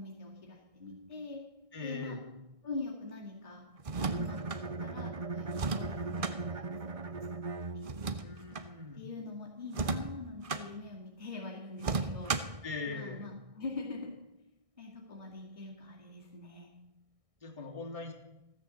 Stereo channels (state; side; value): late; left; 1.6 ms